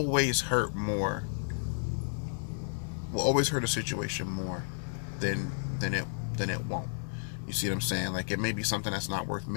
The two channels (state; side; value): silent; right; 56 dB below the other